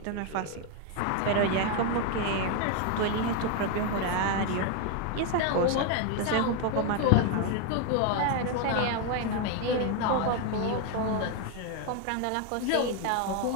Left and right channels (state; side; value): different; both; correlation 0.01